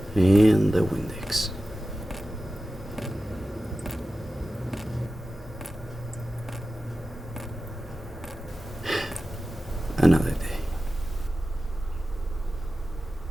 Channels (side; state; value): both; normal; correlation 0.94